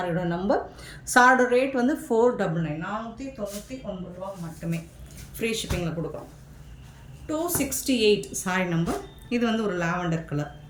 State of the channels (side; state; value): both; identical; correlation 1.00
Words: நம்பர். சாரியோட ரேட் வந்து 499, 499 ரூபா மட்டுமே. ஃப்ரீ ஷிப்பிங்கில் கொடுக்குறோம். 268 சாரி நம்பர். இது வந்து ஒரு லாவெண்டர் கலர்.